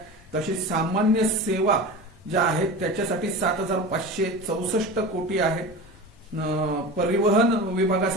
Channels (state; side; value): normal; both; correlation 0.31